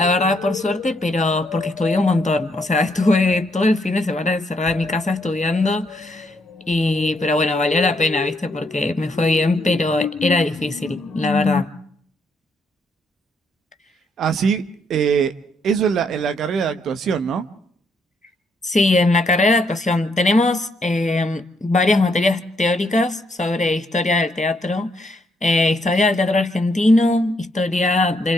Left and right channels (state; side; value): normal; both; correlation 0.74